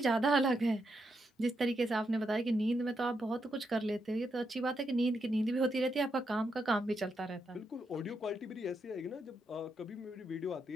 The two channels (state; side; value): normal; both; correlation 0.82